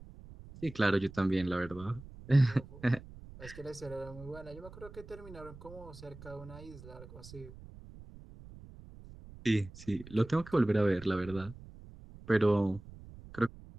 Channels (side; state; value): right; noise; rumble, 17 dB below the sound